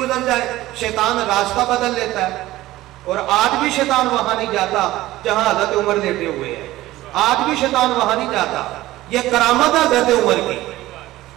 جائے شیطان راستہ بدل لیتا ہے. اور آج بھی شیطان وہاں نہیں جاتا جہاں حضرت عمر لیٹے ہوئے ہیں، آج بھی شیطان وہاں نہیں جاتا. یہ کرامت ہے حضرت عمر کی.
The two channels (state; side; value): quieter; left; 16.5 dB